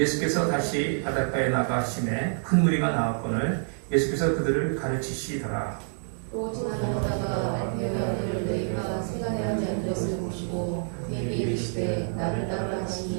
다시 바닷가에 나가심에 큰 무리가 나왔거늘 예수께서 그들을 가르치시더라. 또 지나가다가 알페오를 너희가 세간에 하지 않은 것을 보시고 그에게 이르시되 나를 따르라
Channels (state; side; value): silent; left; digital silence